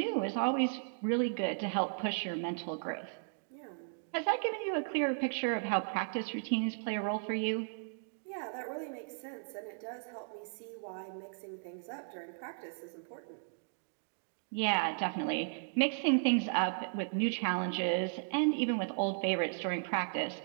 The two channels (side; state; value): left; silent; digital silence